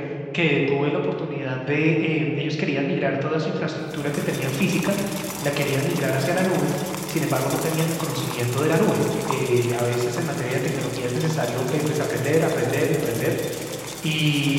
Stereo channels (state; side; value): identical; both; correlation 1.00